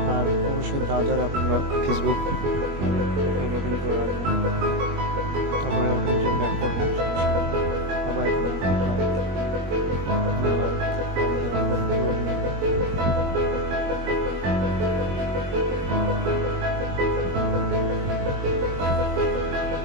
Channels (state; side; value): late; left; 21 ms